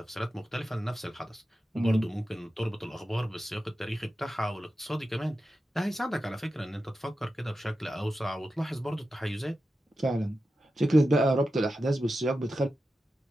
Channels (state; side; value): normal; both; correlation 0.91